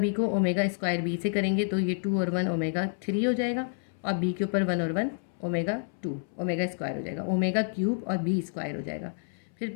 को ओमेगा स्क्वायर बी से करेंगे तो ये 2 और 1 ओमेगा 3 हो जाएगा और बी के ऊपर 1 और 1 ओमेगा 2 ओमेगा स्क्वायर हो जाएगा, ओमेगा क्यूब और बी स्क्वायर हो जाएगा। फिर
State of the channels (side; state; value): right; silent; 59 dB below the other